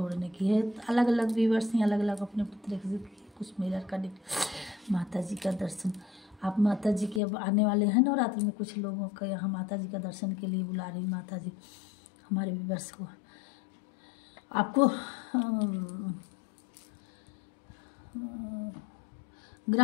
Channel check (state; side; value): drops out; right; at 7.2 s